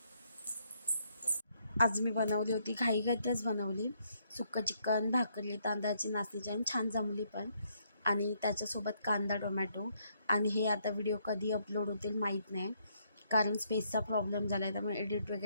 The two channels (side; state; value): both; inverted; correlation -0.72